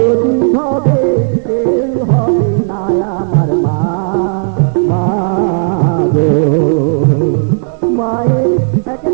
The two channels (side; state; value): left; silent; digital silence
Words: হবে কেউ হবে না আমার মা। গো মায়ের এক